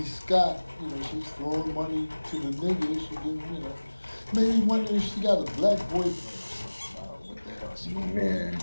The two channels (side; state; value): both; inverted; correlation -1.00